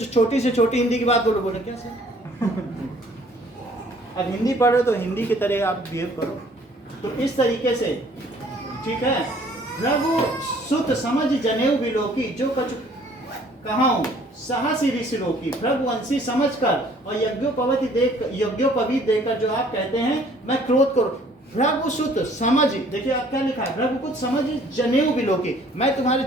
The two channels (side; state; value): both; normal; correlation 0.57